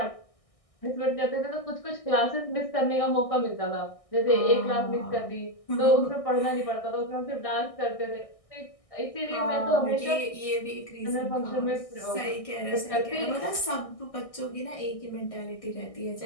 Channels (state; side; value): late; right; 1.6 ms